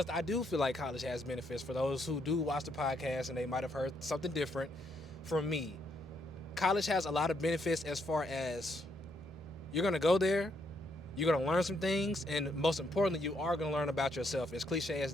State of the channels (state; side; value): normal; both; correlation 0.74